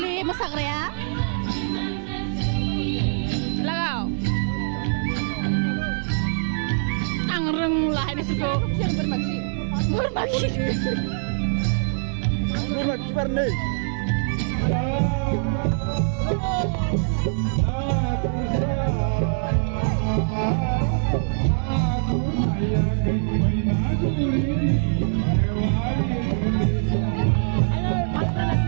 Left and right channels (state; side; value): silent; left; digital silence